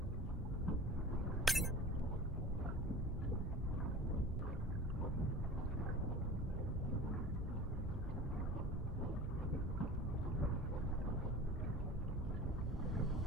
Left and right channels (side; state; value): both; normal; correlation 0.38